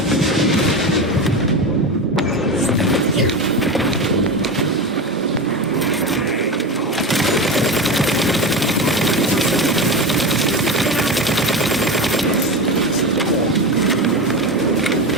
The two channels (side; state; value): both; normal; correlation 0.23